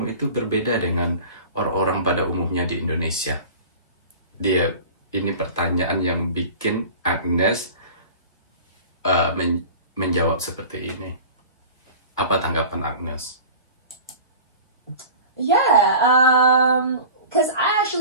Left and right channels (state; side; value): inverted; both; correlation -0.39